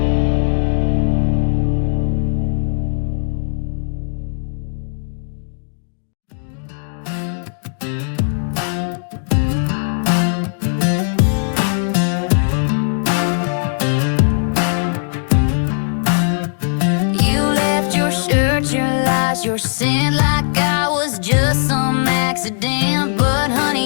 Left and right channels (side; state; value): right; silent; digital silence